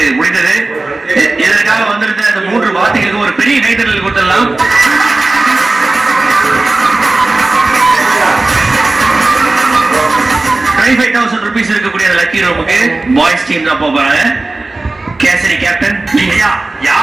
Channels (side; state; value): left; quieter; 3.1 dB